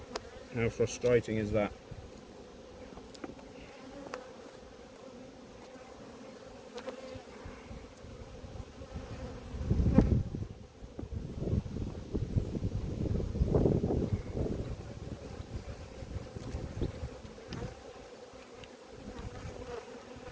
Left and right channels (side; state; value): both; identical; correlation 1.00